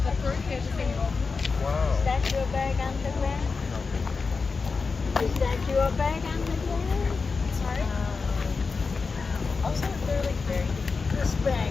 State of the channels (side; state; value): right; quieter; 4.6 dB